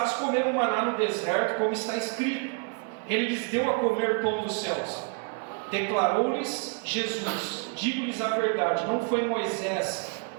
comeram maná no deserto, como está escrito: ele lhes deu a comer pão dos céus. Declarou-lhes Jesus: digo-lhes a verdade, não foi Moisés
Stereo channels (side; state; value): left; quieter; 36.3 dB